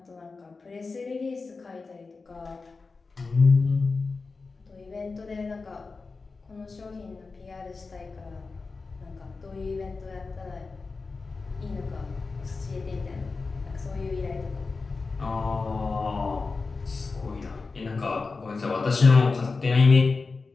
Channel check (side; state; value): right; quieter; 4.2 dB